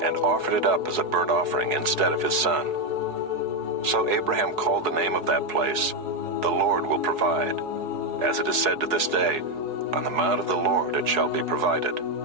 and offered it up as a burnt offering instead of his son. So Abraham called the name of that place, "The Lord will provide." As it is said to this day, "On the mount of the Lord it shall be provided."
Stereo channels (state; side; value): late; left; 4.7 ms